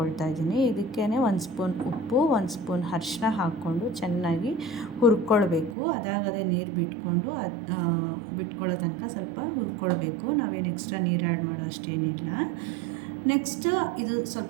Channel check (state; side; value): drops out; left; at 5.8 s